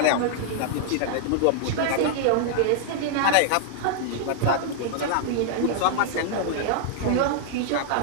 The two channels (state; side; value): different; both; correlation -0.01